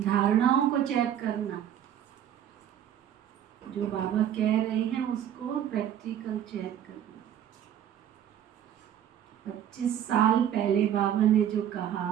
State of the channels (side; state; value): left; quieter; 10.2 dB